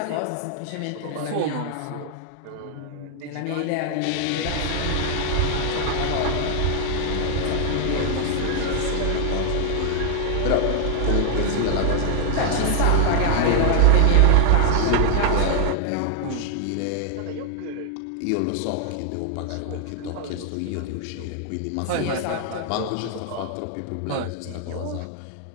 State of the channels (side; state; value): both; different; correlation 0.00